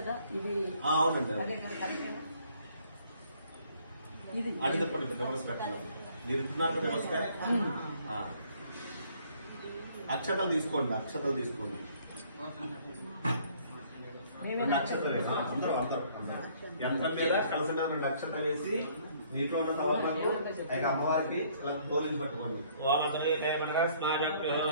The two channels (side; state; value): both; inverted; correlation -0.61